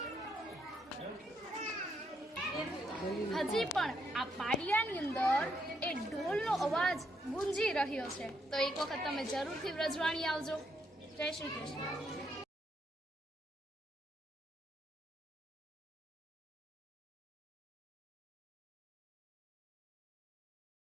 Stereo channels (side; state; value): both; normal; correlation 0.76